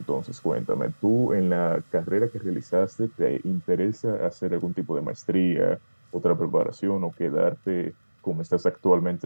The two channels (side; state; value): both; inverted; correlation -1.00